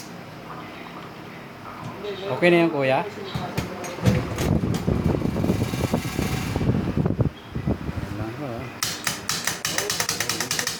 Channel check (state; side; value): identical; both; correlation 1.00